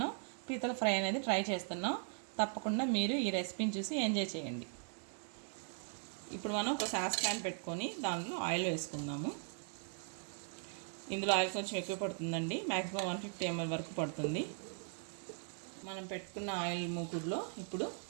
పీతల ఫ్రై అనేది ట్రై చేస్తున్నాం. తప్పకుండా మీరు ఈ రెసిపీని చూసి ఎంజాయ్ చేయండి. ఇప్పుడు మనం ఒక సాస్ ప్యాన్ పెట్టుకొని దానిలో ఆయిల్ వేసుకుందాము. ఇందులో ఆయిల్ కొంచెం ఎక్కువ పడుతుందండి, మ్యాక్సిమం 150 ml వరకు పడుతుంది. మనం పెట్టుకున్న ఆయిల్ మూకుడులో ఇప్పుడు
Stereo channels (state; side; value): silent; left; 52 dB below the other